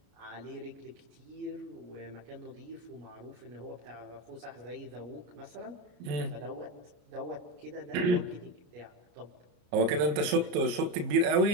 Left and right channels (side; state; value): left; late; 34 ms